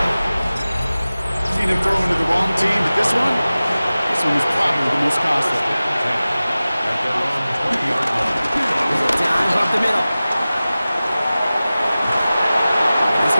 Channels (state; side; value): inverted; both; correlation -0.97